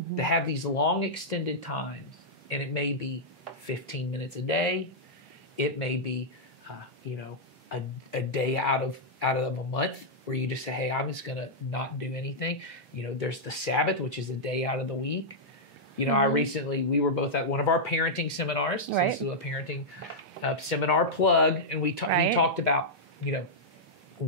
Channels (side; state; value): both; normal; correlation -0.08